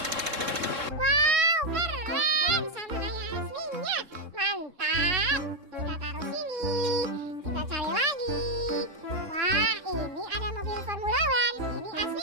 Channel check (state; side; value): late; left; 3.7 ms